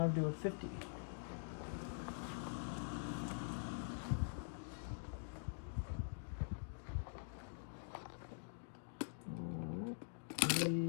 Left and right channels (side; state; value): right; silent; digital silence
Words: to a $50.